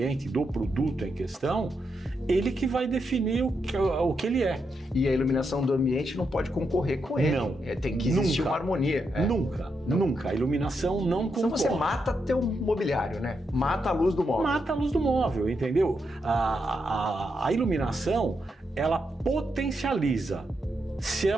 do produto em questão, ele que vai definir o que ele é. E a iluminação do ambiente não pode concorrer com ele. Não. Tem que existir Nunca. uma harmonia. Nunca. A iluminação não concorre. Então você mata teu mobiliário, né? Mata a luz do móvel. Mata a luz do móvel, entendeu? A iluminação, ela potencializa. Se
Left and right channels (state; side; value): normal; both; correlation 0.82